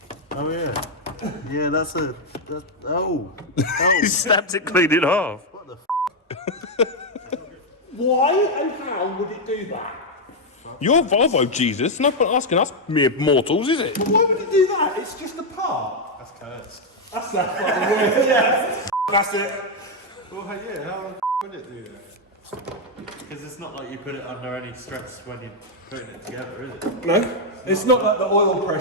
Oh yeah. Yeah, that's oh. He snapped it clean in half. What the Why and how would it do that? You're Volvo, Jesus. No point asking us mere mortals, is it? But why would it do that? It's just a part. That's cursed. That's that fucking word. Yeah. That's it. Well, yeah, how would it do that? Because it's not like you put it under any stress when you're putting it together, is it? No, it's not like the oil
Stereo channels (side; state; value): both; normal; correlation 0.01